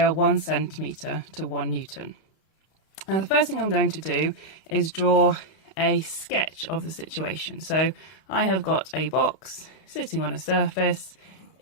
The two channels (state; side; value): late; right; 31 ms